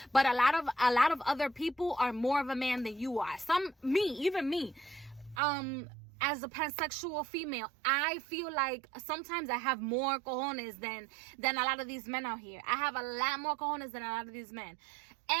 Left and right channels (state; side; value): drops out; left; at 5.4 s